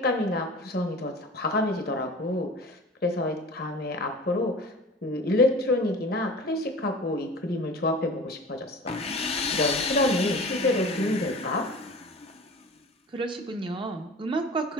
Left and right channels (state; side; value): normal; both; correlation 0.39